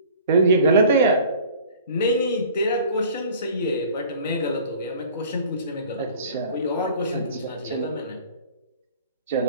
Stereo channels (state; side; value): inverted; both; correlation -0.47